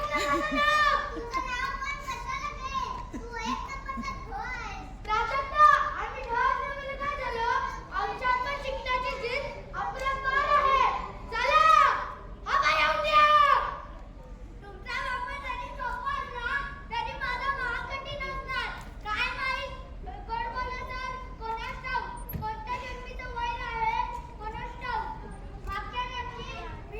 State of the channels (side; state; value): both; identical; correlation 1.00